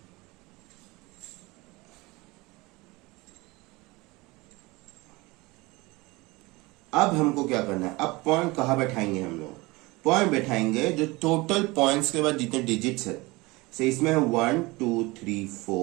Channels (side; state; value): left; quieter; 23.0 dB